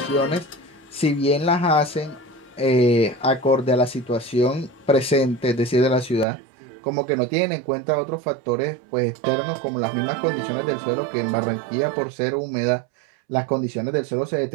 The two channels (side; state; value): left; drops out; at 6.2 s